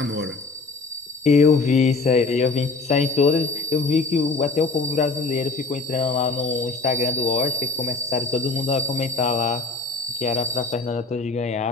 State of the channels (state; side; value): quieter; right; 3.9 dB